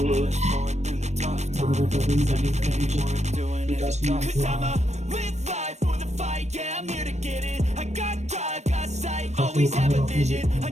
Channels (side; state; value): left; late; 0.33 ms